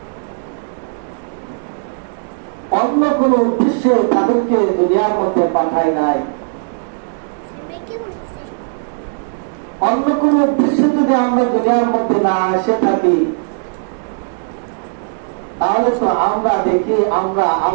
অন্য কোন উদ্দেশ্যে তাদেরকে দুনিয়ার মধ্যে পাঠায় নাই। অন্য কোন উদ্দেশ্যে যদি আমরা দুনিয়ার মধ্যে না এসে থাকি, তাহলে তো আমরা দেখি আমরা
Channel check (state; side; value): silent; left; digital silence